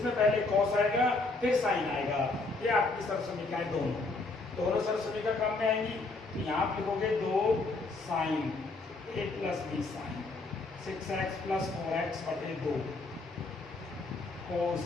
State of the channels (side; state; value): right; quieter; 3.4 dB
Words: पहले cos आएगा फिर साइन आएगा। ये आपकी सरसमीकाएं दोनों सरसमीका काम में आएंगी। तो यहाँ आप लिखोगे 2 sine a plus B sine 6x plus 4x बटे 2 cos